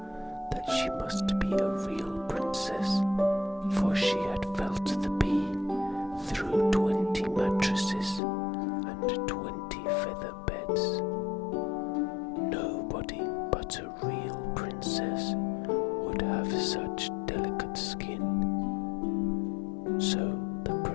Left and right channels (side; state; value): right; drops out; at 8.2 s